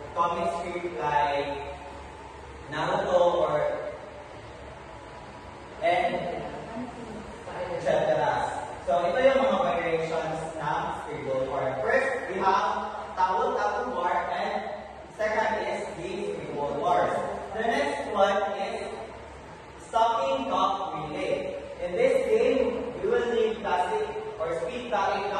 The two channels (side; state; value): both; identical; correlation 1.00